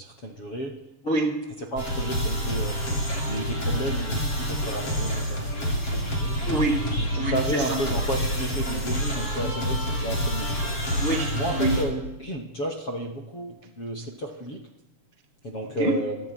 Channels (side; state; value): right; late; 7.4 ms